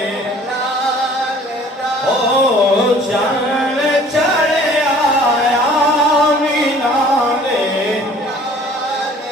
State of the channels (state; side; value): normal; both; correlation 0.52